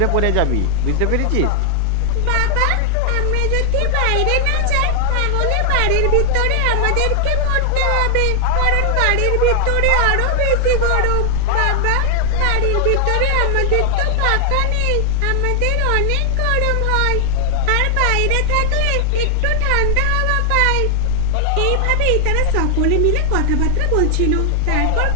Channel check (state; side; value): different; both; correlation 0.00